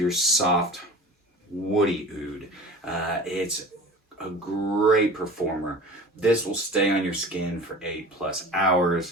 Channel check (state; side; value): normal; both; correlation 0.38